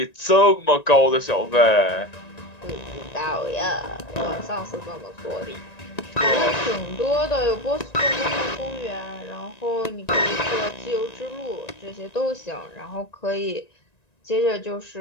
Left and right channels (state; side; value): late; right; 1.9 ms